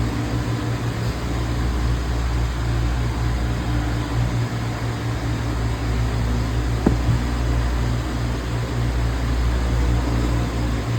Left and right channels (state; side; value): identical; both; correlation 1.00